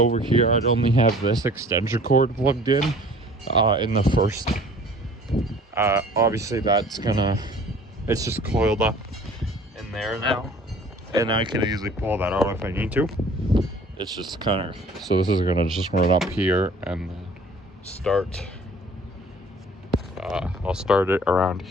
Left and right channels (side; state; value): both; normal; correlation 0.50